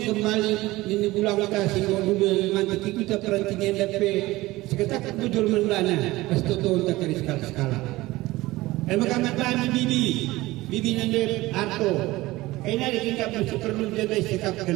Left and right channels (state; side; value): quieter; left; 19.0 dB